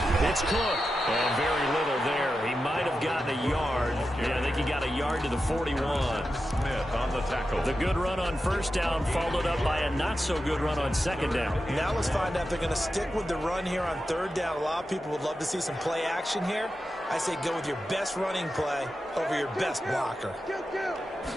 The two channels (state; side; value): normal; both; correlation 0.90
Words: it's Cook. And very little there. He might have gotten a yard. Yeah, I think he got a yard to the 41. Smith on the tackle. The good run on 1st down followed up by a not-so-good run on 2nd down. Now let's find out if they're going to stick with the run here on 3rd down. A lot of people would love to see some play action here. I say go with your best running play over your best blocker.